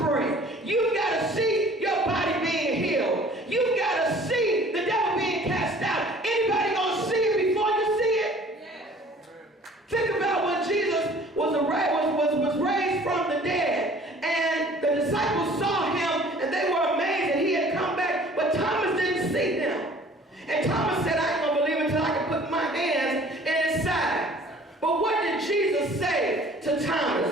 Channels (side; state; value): both; normal; correlation 0.51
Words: You've got to see your body being healed. You've got to see the devil being cast out. Anybody gonna see it before you see it? Yes. Think about when Jesus was raised from the dead, and the disciples saw him, and they were amazed that he had come back, but Thomas didn't see him. And Thomas said, I ain't gonna believe until I can put my hands in his side. But what did Jesus say to